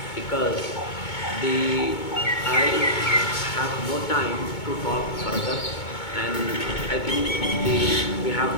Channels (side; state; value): right; late; 2.2 ms